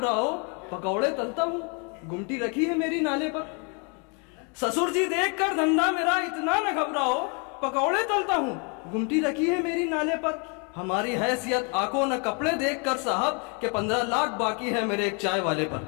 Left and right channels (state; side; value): quieter; right; 34.8 dB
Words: पकौड़े तलता हूँ, गुमटी रखी है मेरी नाले पर। ससुर जी देख कर धंधा मेरा, इतना न घबराओ पकौड़े तलता हूँ, गुमटी रखी है मेरी नाले पर। हमारी हैसियत आंखों न कपड़े देख कर साहब, के 15 लाख बाकी है मेरे एक चाय वाले पर।